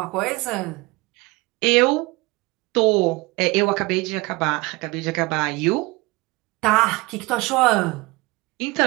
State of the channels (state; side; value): quieter; left; 23.3 dB